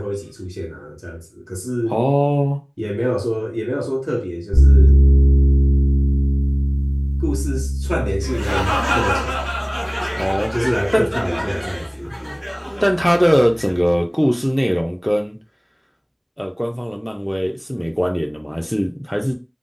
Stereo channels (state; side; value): identical; both; correlation 1.00